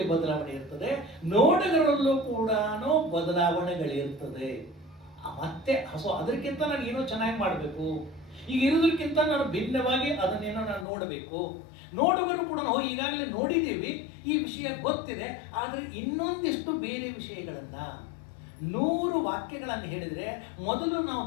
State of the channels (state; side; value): drops out; right; at 10.9 s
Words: ಬದಲಾವಣೆ ಇರ್ತದೆ, ನೋಟಗಳಲ್ಲೂ ಕೂಡ ಬದಲಾವಣೆಗಳಿರ್ತದೆ. ಮತ್ತೆ ಅದಕ್ಕಿಂತ ನಾನು ಏನೋ ಚೆನ್ನಾಗಿ ಮಾಡಬೇಕು, ಈಗ ಇರೋದಕ್ಕಿಂತ ನಾನು ಭಿನ್ನವಾಗಿ ಅದನ್ನೇನೋ ನಾನು ನೋಡಬೇಕು. ನೋಡುಗರು ಕೂಡ ಈಗಾಗಲೇ ನೋಡಿದ್ದೀವಿ, ಈ ವಿಷಯ ಗೊತ್ತಿದೆ, ಆದರೆ ಇನ್ನೊಂದಿಷ್ಟು ಬೇರೆ ವಿಷಯಗಳನ್ನ 100 ವಾಕ್ಯಗಳನ್ನು ಹೇಳಿದ್ರೆ ಮೊದಲು ನಾವು